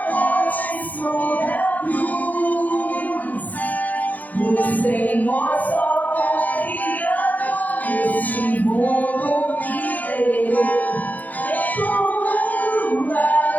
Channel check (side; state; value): right; late; 0.080 ms